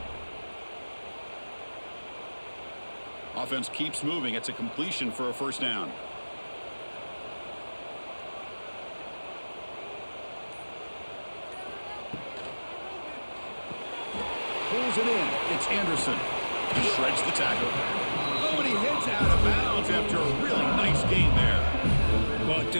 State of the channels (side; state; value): both; inverted; correlation -1.00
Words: Offense keeps moving. It's a completion for a first down. Pulls it in. It's Anderson. He shreds the tackle. Oh, and he heads out of bounds after a really nice gain there. Well,